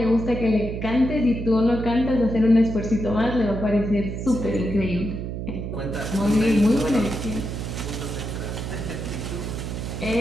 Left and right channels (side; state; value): right; noise; hum, 5 dB below the sound